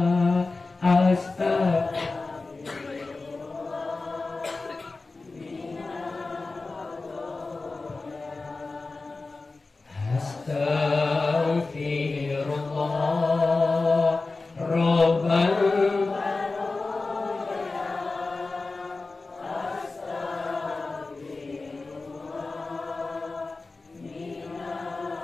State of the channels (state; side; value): quieter; right; 3.6 dB